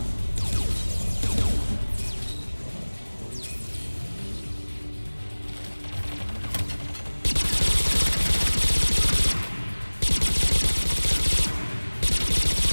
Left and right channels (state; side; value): inverted; both; correlation -1.00